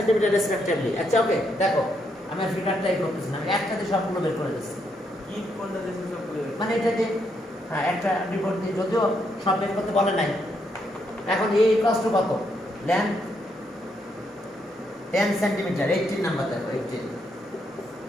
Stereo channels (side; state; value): both; normal; correlation 0.77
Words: রেসপেক্টিভলি। আচ্ছা ওকে, দেখো আমি ফিগারটাই করতেছি না, আমি একসাথে সবগুলো বের করে দিচ্ছি। কি কোনটা দেশে সবগুলো? মানে এটা যে হ্যাঁ একটা রিপোর্ট দিয়ে, যদিও সব বের করতে বলে নাই। এখন এই কষ্ট কত? লেন্থ 10 সেন্টিমিটার, 18 নাম্বার দেখো, 18,